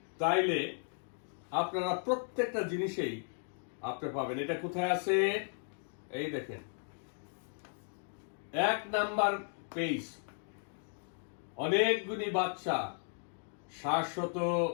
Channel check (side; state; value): right; silent; 54 dB below the other